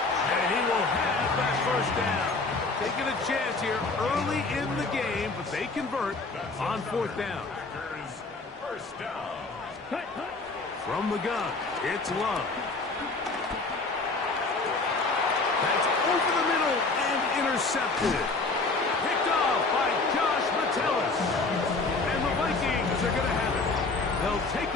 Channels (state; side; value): quieter; right; 3.7 dB